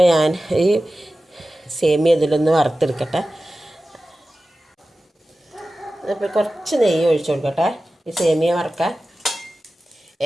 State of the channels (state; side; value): normal; both; correlation 0.95